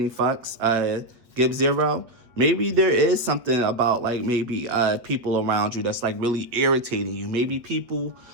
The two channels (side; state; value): left; late; 8.3 ms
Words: fucks, give 0. Maybe there is something about like maybe people around you that's like really irritating you. Maybe people